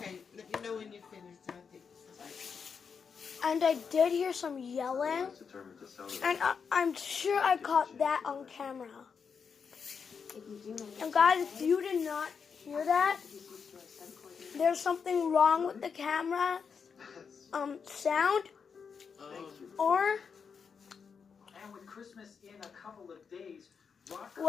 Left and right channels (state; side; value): quieter; right; 6.1 dB